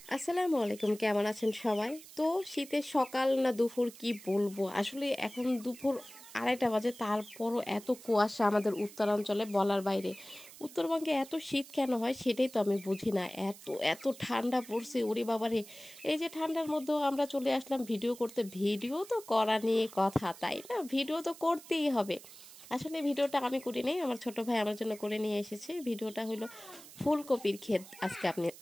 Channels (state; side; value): noise; right; hiss, 18 dB below the sound